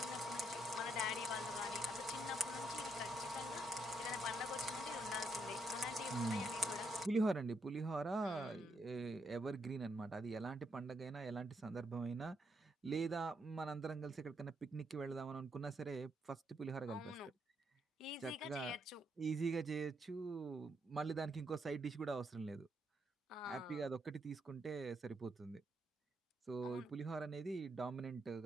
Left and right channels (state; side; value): normal; both; correlation 0.77